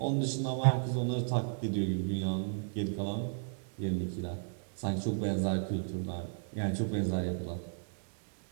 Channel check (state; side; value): silent; left; digital silence